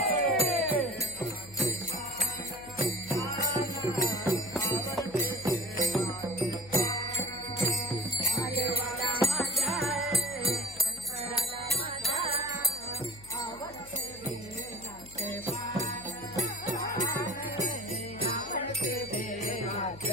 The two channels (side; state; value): left; noise; hum, 20 dB below the sound